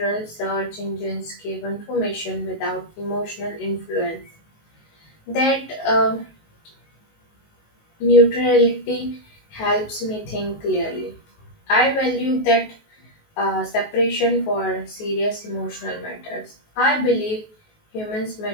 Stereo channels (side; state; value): right; late; 19 ms